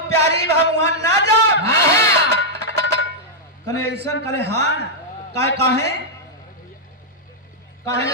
प्यारी बा, हम वहां ना जाब। कने ऐसा कले हाँ काहे काहे काहे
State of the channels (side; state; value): both; normal; correlation -0.06